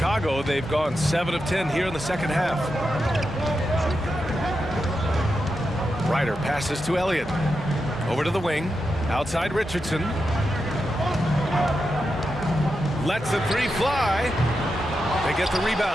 they've gone 7 of 10 here in the second half. Ryder passes to Elliott. Over to the wing. Outside Richardson. Lets the 3 fly. They get the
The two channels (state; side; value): normal; both; correlation 0.88